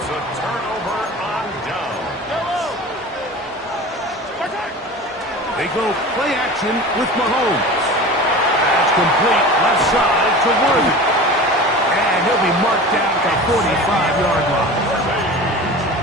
a turnover on down. They go play action with Mahomes. That's complete left side to Worthy. And he'll be marked down at the 45-yard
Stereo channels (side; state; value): both; normal; correlation 0.35